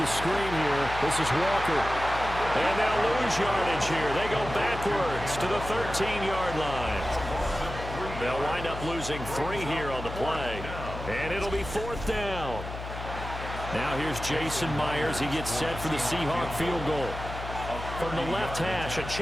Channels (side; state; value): left; noise; hum, 9 dB below the sound